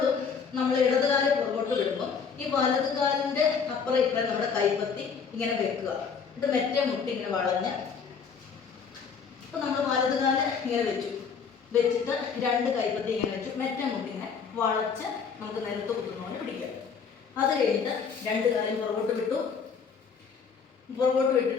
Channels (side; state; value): right; quieter; 6.1 dB